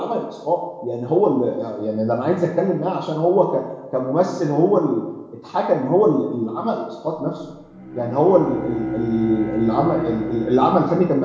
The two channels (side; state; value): both; identical; correlation 1.00